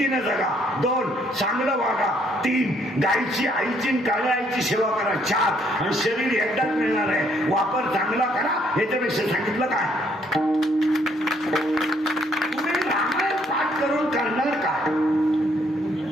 जगा, 2 चांगलं वागा, 3 गायची आईची काळ्या आईची सेवा करा, 4 आणि शरीर एकदाच मिळणार आहे, वापर चांगला करा. याच्यापेक्षा सांगितलं काय? तुम्ही रामायण पाठ करून करणार काय?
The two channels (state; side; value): normal; both; correlation 0.68